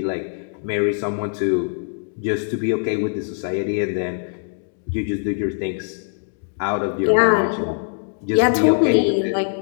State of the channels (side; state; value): right; silent; 64 dB below the other